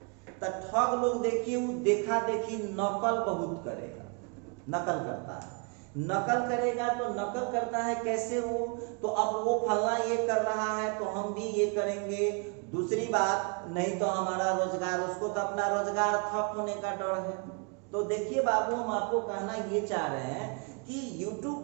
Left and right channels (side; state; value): left; quieter; 36.2 dB